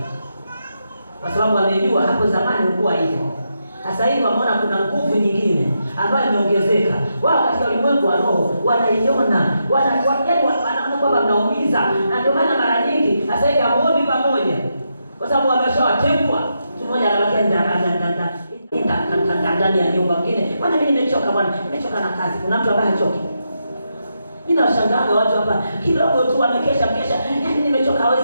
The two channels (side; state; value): both; inverted; correlation -0.83